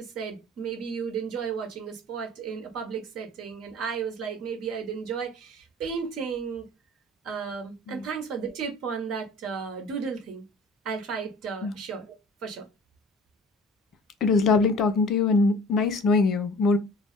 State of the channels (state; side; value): normal; both; correlation 0.44